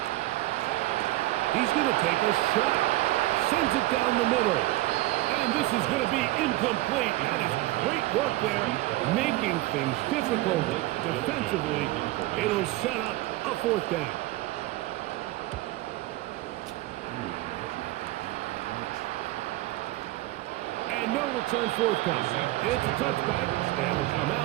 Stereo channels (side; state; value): left; quieter; 17.8 dB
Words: He's going to take a shot. Sends it down the middle. And this is going to be incomplete. That is great work there, making things difficult defensively. It'll set up a fourth down. And no return forthcoming. It's a touchback and will come